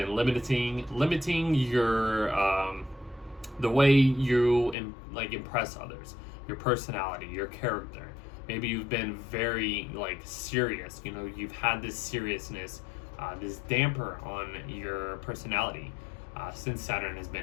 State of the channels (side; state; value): right; drops out; at 4.8 s